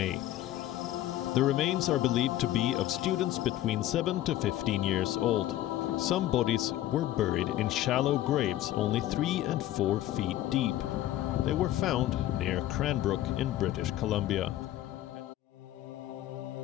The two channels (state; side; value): quieter; right; 14.0 dB